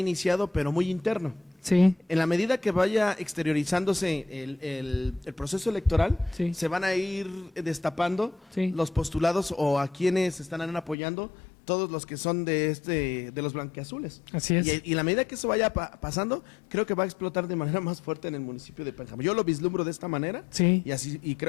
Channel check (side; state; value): right; drops out; at 11.0 s